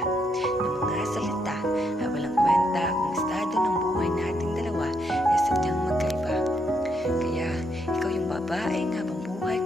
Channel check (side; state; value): both; normal; correlation 0.77